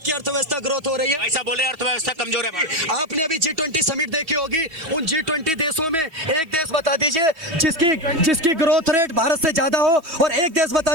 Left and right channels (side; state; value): left; late; 3.1 ms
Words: की अर्थव्यवस्था ग्रोथ हो रही है। ऐसा बोले अर्थव्यवस्था कमजोर है। आपने अभी G20 समिट देखी होगी। उन G20 देशों में एक देश बता दीजिए जिसकी ग्रोथ रेट भारत से ज्यादा हो, और एक देश बता